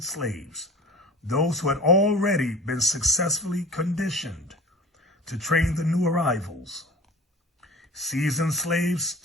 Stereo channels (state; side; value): normal; both; correlation 0.40